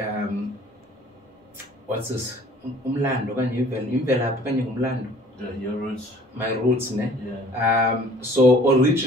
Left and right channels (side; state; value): both; normal; correlation 0.52